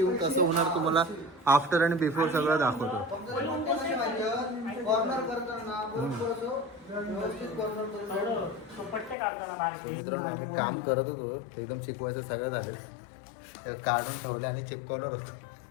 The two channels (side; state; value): right; drops out; at 9.2 s